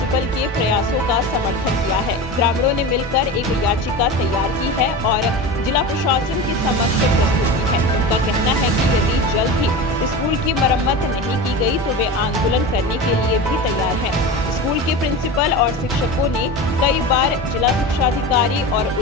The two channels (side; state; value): both; normal; correlation 0.28